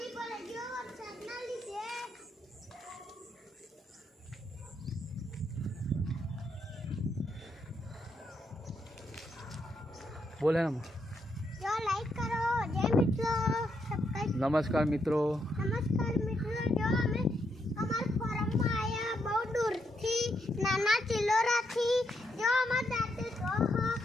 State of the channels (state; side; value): normal; both; correlation 0.79